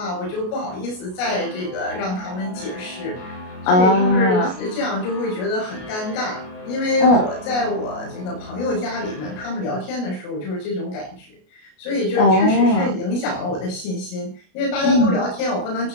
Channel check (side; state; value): right; late; 33 ms